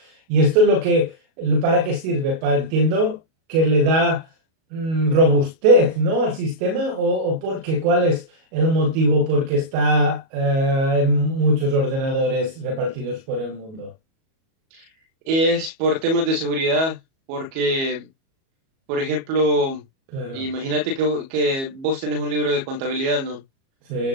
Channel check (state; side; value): late; left; 37 ms